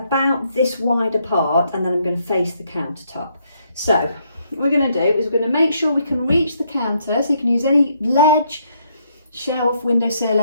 this wide apart, and then I'm going to face the countertop. So what we're going to do is we're going to make sure we can reach the counter, so you can use any ledge, shelf, windowsill,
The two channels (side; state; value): both; inverted; correlation -0.73